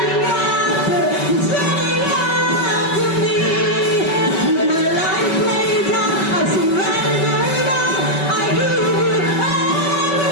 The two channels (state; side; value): late; right; 5.3 ms